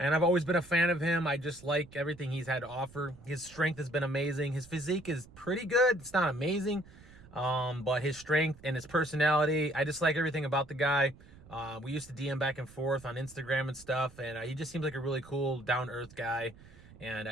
I've always been a fan of him. I just like everything he's had to offer. His strength has been amazing. His physique is pretty good. It's not amazing, but his strength and his personality, I just like everything about the guy. We used to DM back and forth on Instagram and stuff, and he just seems like a really cool, down-to-earth guy. And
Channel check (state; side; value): noise; right; rumble, 22 dB below the sound